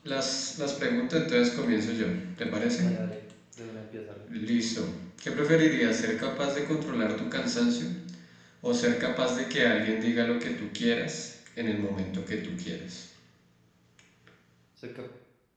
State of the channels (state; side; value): identical; both; correlation 1.00